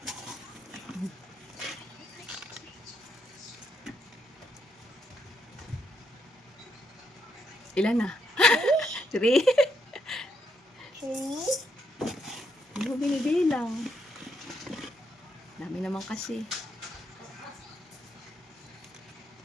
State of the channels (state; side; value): normal; both; correlation 0.77